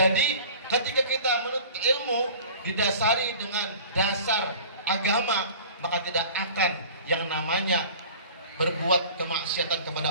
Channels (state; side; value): inverted; both; correlation -0.43